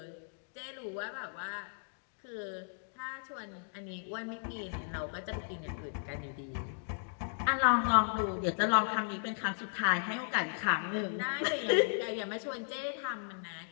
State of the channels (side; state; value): right; silent; digital silence